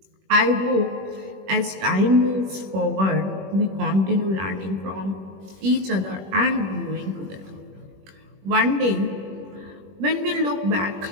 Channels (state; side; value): late; left; 21 ms